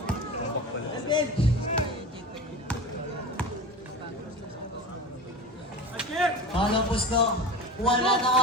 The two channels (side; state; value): both; normal; correlation 0.30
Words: Palang pusto. Wala na